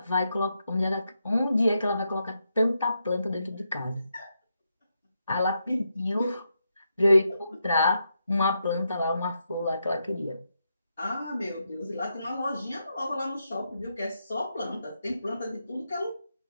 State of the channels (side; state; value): both; inverted; correlation -0.83